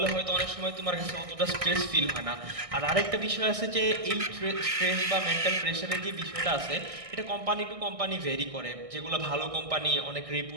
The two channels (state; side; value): late; left; 1.6 ms